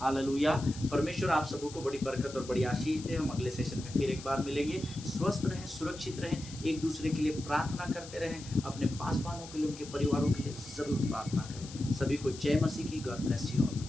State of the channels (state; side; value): noise; left; hiss, 15 dB below the sound